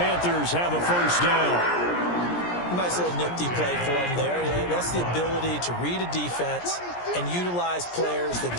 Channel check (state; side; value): late; right; 17 ms